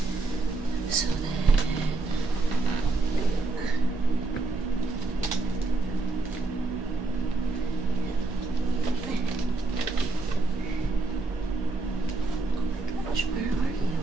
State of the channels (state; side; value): quieter; left; 3.4 dB